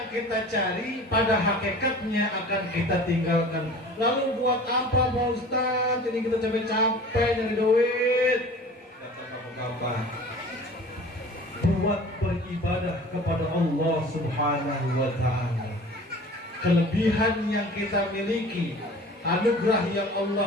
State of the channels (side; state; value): both; normal; correlation 0.42